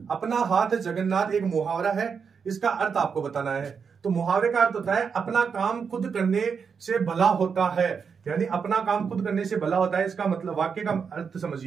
अपना हाथ जगन्नाथ एक मुहावरा है, इसका अर्थ आपको बताना है। तो मुहावरे का अर्थ होता है अपना काम खुद करने से भला होता है, यानी अपना काम खुद करने से भला होता है। इसका मतलब वाक्य का अर्थ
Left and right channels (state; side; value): quieter; left; 6.1 dB